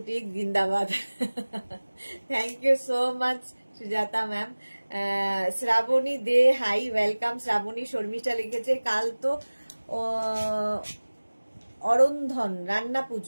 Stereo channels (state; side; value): inverted; both; correlation -1.00